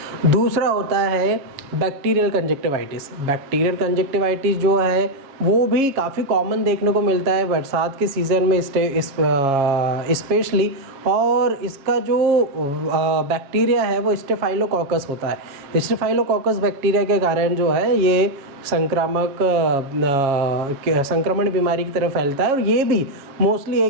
दूसरा होता है बैक्टीरियल कंजक्टिवाइटिस। बैक्टीरियल कंजक्टिवाइटिस जो है वो भी काफ़ी कॉमन देखने को मिलता है बरसात के सीज़न में स्पेशली, और इसका जो बैक्टीरिया है वो स्टेफाइलोकोकस होता है। स्टेफाइलोकोकस बैक्टीरिया के कारण जो है ये संक्रमण बीमारी की तरफ फैलता है, और ये भी मोस्टली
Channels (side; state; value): left; late; 7.3 ms